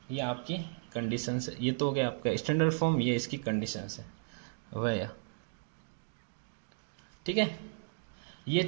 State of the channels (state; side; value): silent; left; digital silence